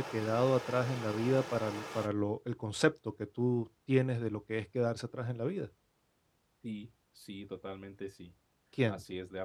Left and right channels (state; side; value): identical; both; correlation 1.00